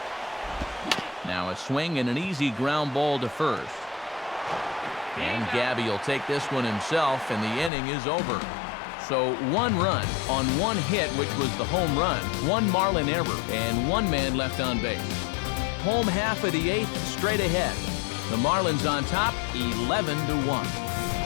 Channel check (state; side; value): drops out; right; at 7.7 s